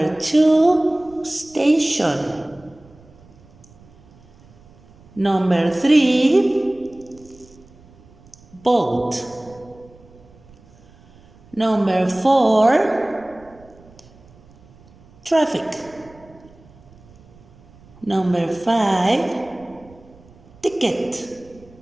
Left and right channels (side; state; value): right; noise; rumble, 26 dB below the sound